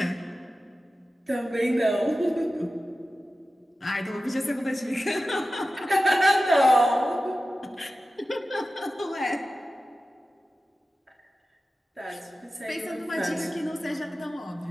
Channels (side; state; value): both; normal; correlation 0.94